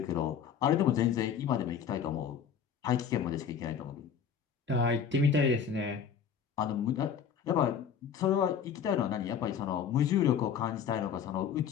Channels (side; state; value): right; quieter; 7.5 dB